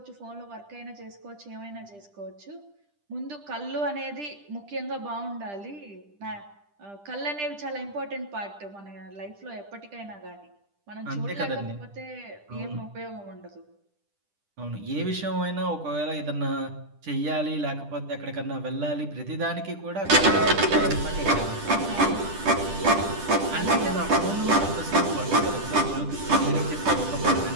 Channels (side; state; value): left; late; 10 ms